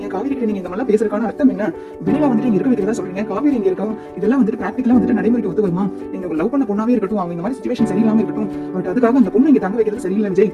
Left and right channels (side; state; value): both; identical; correlation 1.00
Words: காவேரி கிட்ட நீங்க இந்த மாதிரி பேசுறதுக்கான அர்த்தம் என்ன, வெண்ணிலா வந்துட்டு இங்க இருக்க வைக்கிறதா சொல்றீங்க, காவேரி இங்க இருக்கா, இதெல்லாம் வந்துட்டு பிராக்டிகலா வந்துட்டு நடைமுறைக்கு ஒத்து வருமா, நீங்க லவ் பண்ண பொண்ணாவே இருக்கட்டும், அவங்க இந்த மாதிரி சிச்சுவேஷன் சரியில்லாம இருக்கட்டும், பட் அதுக்காக அந்த பொண்ணு இங்க தங்க வைக்கிறது சரியில்லை விஜய்,